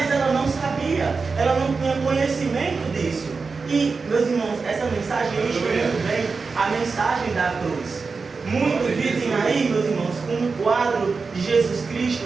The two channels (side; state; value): left; quieter; 4.6 dB